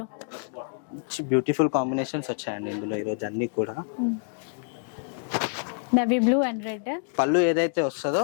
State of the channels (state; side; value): silent; right; digital silence